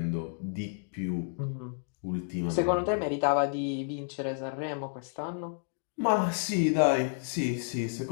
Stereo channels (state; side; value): silent; right; digital silence